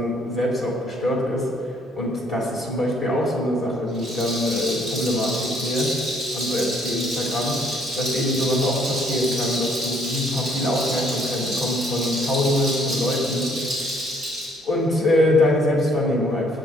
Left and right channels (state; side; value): normal; both; correlation 0.65